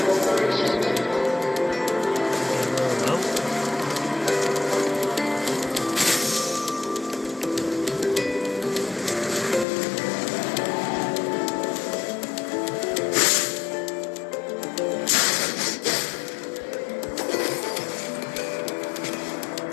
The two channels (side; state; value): right; drops out; at 9.7 s